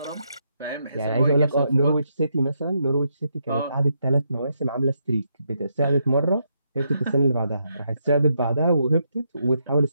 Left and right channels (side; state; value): both; inverted; correlation -0.79